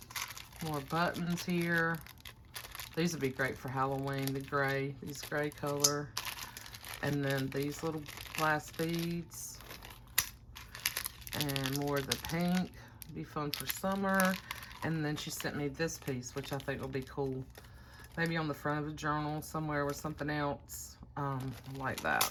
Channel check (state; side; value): identical; both; correlation 1.00